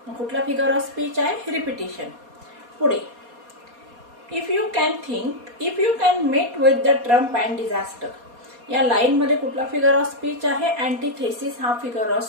मग कुठला फिगर ऑफ स्पीच आहे? रिपिटेशन. पुढे if you can met with the Trump and disaster. या लाईन मध्ये कुठला फिगर ऑफ स्पीच आहे? अँटीथेसिस हा फिगर ऑफ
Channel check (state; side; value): late; left; 4.2 ms